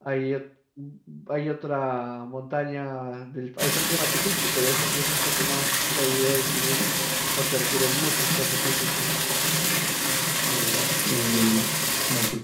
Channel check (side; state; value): both; identical; correlation 1.00